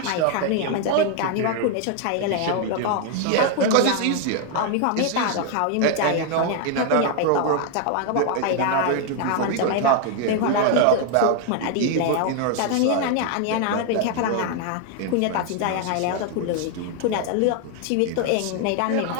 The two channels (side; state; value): both; different; correlation 0.00